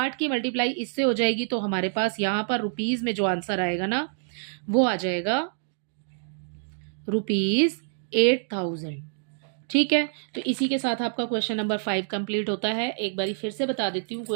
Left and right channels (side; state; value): left; silent; digital silence